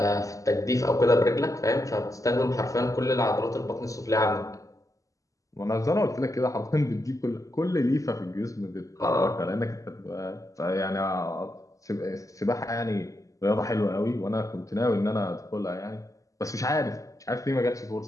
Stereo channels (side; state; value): right; late; 0.16 ms